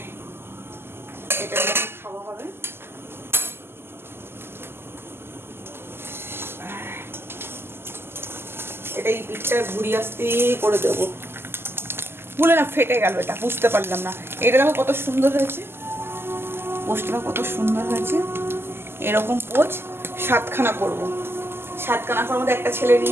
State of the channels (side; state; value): left; late; 0.12 ms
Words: এটা খাওয়া হবে। এটা এই পিঠটা ঘুরিয়ে আসতে করে দেবো, ভুলে না ফেটে গেল, এটা বুঝতে পারলাম না। এটা দেখো কত সুন্দর হয়েছে, পোস্টটা কত সুন্দর হয়েছে। এরকম পোচ 7খানা করবো, 7খানা করার মধ্যে একটা ছেলে